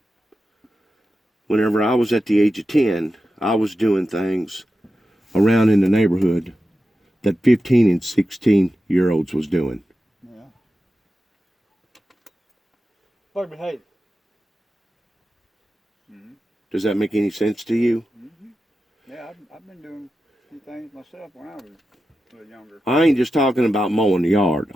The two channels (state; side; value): normal; both; correlation 0.91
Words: whenever I was at the age of 10, I was doing things around in the neighborhood that 15 and 16-year-olds was doing. Yeah. Like behave. Does that make any sense to you? Yeah, I've been doing some things myself when I was a little younger. I ain't just talking about mowing the yard.